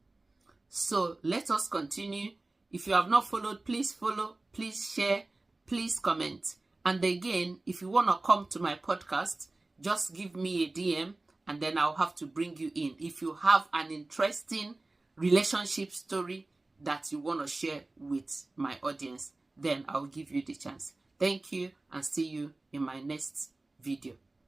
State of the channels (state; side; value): quieter; left; 3.0 dB